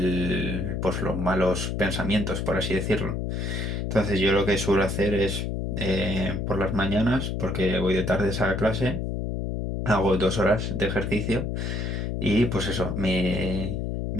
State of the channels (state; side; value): noise; left; hum, 2 dB below the sound